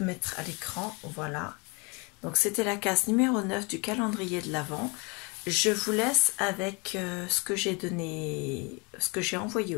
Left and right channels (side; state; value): right; quieter; 29.9 dB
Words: mettre à l'écran. Voilà. Donc c'était la case numéro 9 du calendrier de l'Avent. Je vous laisse avec ce que j'ai envoyé